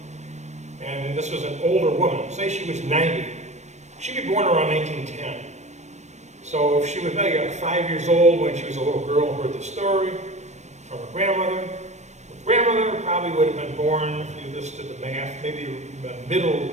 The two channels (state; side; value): late; left; 0.34 ms